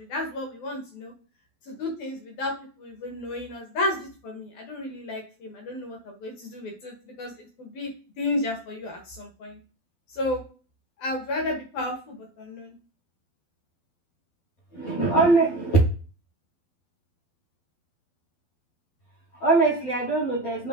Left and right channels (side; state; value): right; late; 12 ms